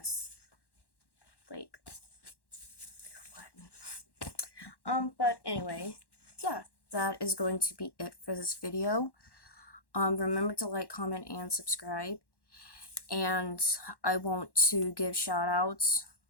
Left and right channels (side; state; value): right; late; 1.1 ms